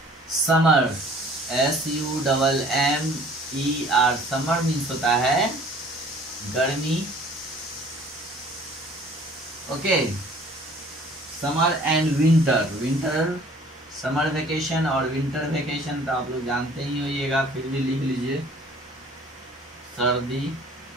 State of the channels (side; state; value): both; normal; correlation 0.53